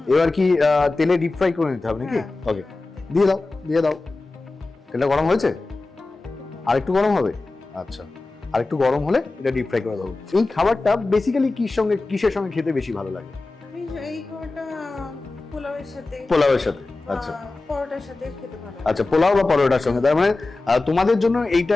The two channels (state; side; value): quieter; right; 3.3 dB